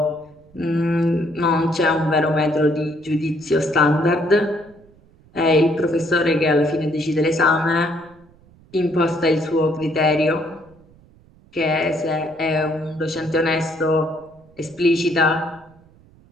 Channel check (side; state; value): right; noise; rumble, 28 dB below the sound